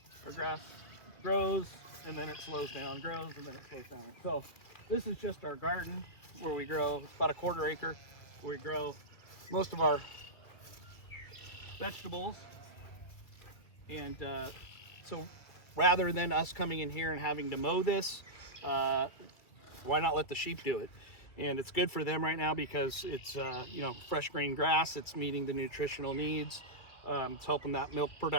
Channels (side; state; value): right; late; 2.6 ms